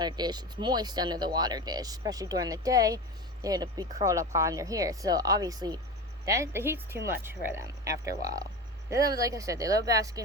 dish, it's moist under the water dish, especially during the day. They'd be curled up under here. So obviously the heat's too much for them after a while. They love, like I said, they love basking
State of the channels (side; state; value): both; normal; correlation 0.27